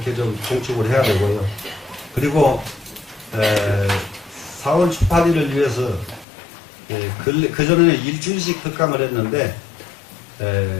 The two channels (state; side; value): drops out; right; at 6.2 s